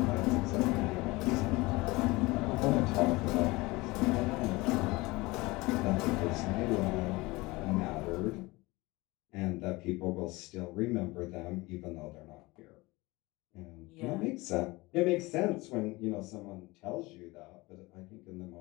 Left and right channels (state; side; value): quieter; right; 22.3 dB